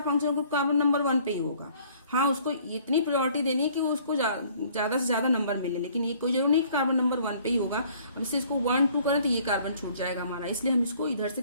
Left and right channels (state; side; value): inverted; both; correlation -0.58